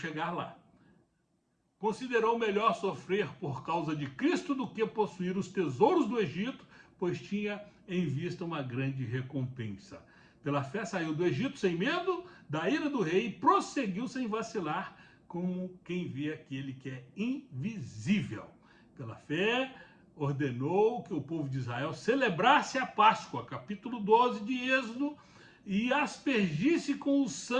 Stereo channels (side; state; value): both; identical; correlation 1.00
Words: lá. Considerou melhor sofrer por causa de Cristo do que possuir os tesouros do Egito, pois tinha em vista uma grande recompensa. Pela fé saiu do Egito sem medo da ira do rei e prosseguiu sem vacilar, como quem vê aquele que é invisível. Pela fé ordenou que o povo de Israel celebrasse a Páscoa, capítulo 12 de Êxodo, e aspergisse com o